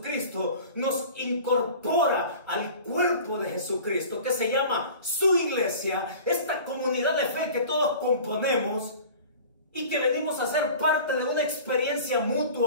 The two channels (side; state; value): both; inverted; correlation -0.41